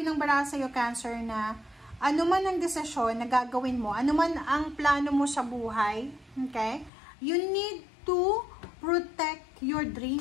ng baraha sa'yo, Cancer, na ano man ang desisyon na gagawin mo, ano man ang plano mo sa buhay, okay, you need to protect your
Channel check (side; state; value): right; drops out; at 6.9 s